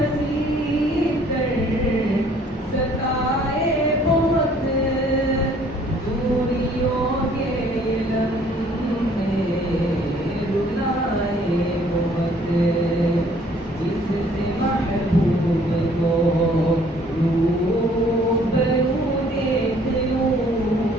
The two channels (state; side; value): normal; both; correlation 0.59